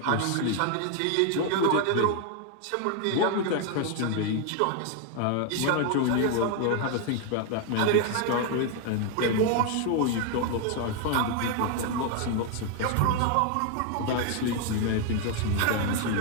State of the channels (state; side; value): different; both; correlation 0.00